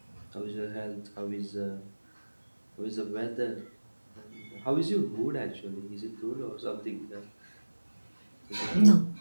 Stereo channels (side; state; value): both; inverted; correlation -1.00